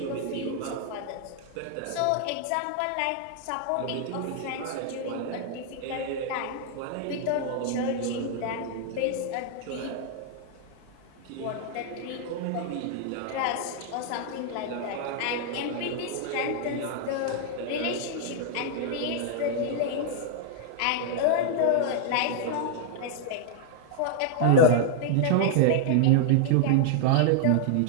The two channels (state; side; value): different; both; correlation -0.01